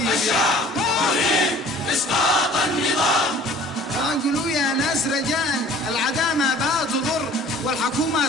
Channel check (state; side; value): normal; both; correlation 0.50